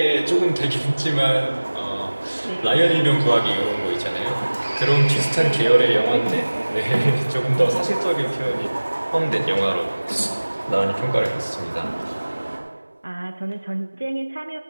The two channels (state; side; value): inverted; both; correlation -1.00